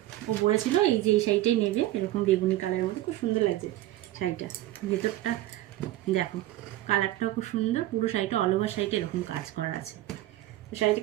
ও বলেছিল এই যে এই শাড়িটাই নেবে, এরকম বেগুনি কালারের মধ্যে, খুব সুন্দর লাগছে শাড়িটা। ভেতরটা দেখো, কালারটাও খুব সুন্দর, পুরো শাড়িটা অল ওভার শাড়িটা এরকম কাজ করা আছে। তো শাড়িটা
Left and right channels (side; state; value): left; quieter; 15.3 dB